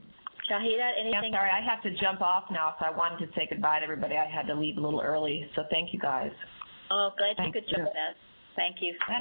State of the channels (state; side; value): inverted; both; correlation -1.00